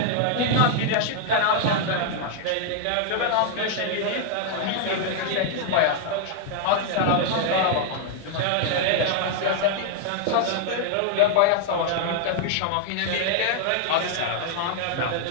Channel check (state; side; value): different; both; correlation -0.01